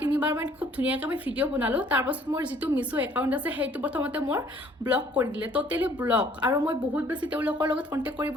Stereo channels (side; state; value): both; normal; correlation 0.58